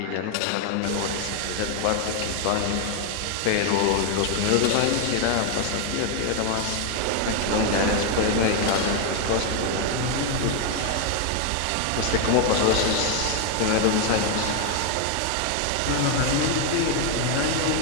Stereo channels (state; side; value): different; both; correlation 0.01